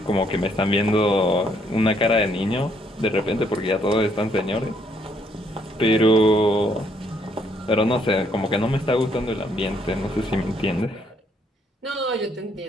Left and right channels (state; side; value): normal; both; correlation 0.69